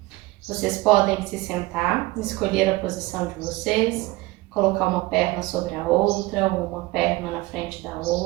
Vocês podem se sentar, escolher a posição de vocês, colocar uma perna sobre a outra ou uma perna na frente da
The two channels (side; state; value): left; quieter; 20.4 dB